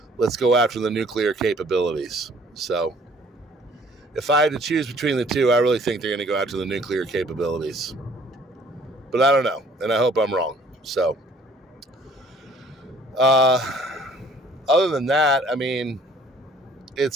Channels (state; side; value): normal; both; correlation 0.57